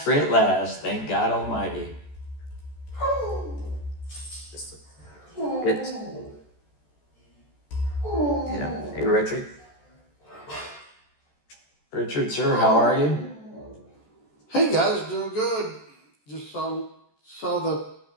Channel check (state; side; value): late; right; 14 ms